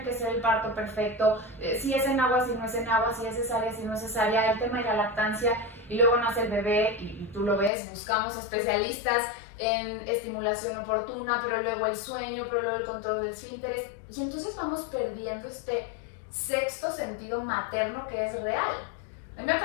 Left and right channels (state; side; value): drops out; right; at 7.7 s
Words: que ser el parto perfecto, si es en agua, si no es en agua, si es cesárea, si no es cesárea, el tema de la lactancia, y luego nace el bebé y tú lo ves, buscamos especialistas en estimulación oportuna, pero luego el sueño, pero luego el control del esfínteres, y entonces vamos perdiendo este sexto sentido materno que es real. A mí me ha